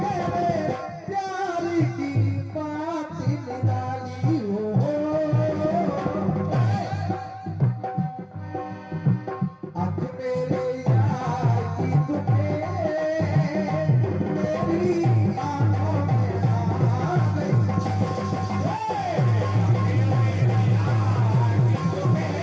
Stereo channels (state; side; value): identical; both; correlation 1.00